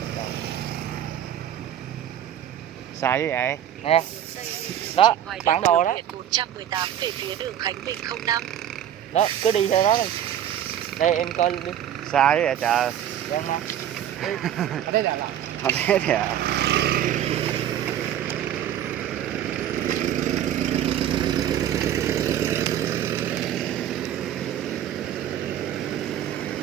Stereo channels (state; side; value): quieter; left; 10.7 dB